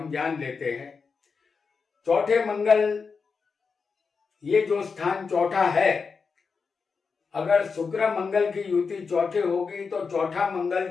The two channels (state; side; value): quieter; right; 5.2 dB